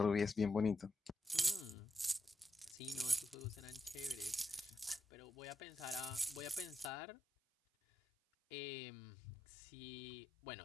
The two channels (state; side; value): drops out; right; at 7.0 s